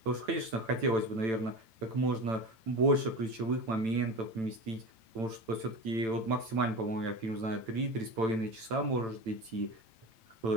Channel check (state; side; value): late; left; 9.0 ms